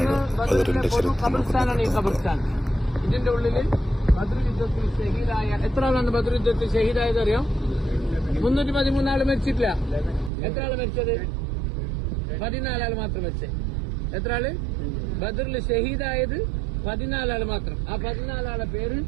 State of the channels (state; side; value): drops out; left; at 10.3 s